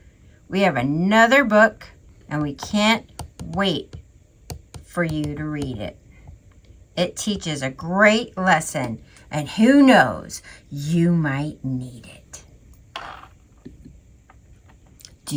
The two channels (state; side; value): identical; both; correlation 1.00